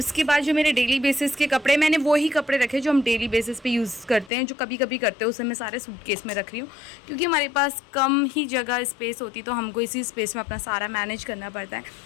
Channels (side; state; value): right; drops out; at 4.3 s